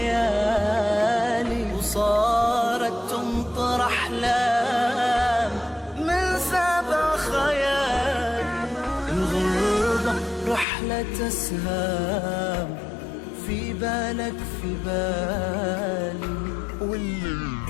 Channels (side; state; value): right; drops out; at 10.7 s